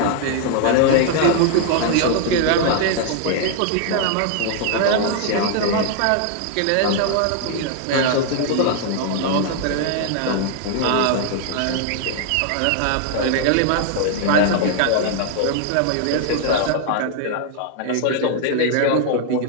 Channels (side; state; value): both; different; correlation 0.00